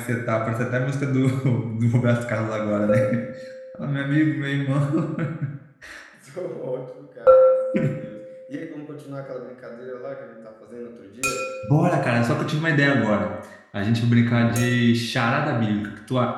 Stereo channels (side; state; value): both; identical; correlation 1.00